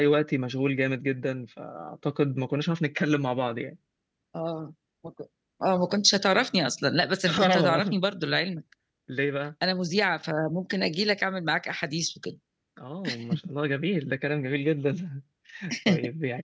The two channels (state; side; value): identical; both; correlation 1.00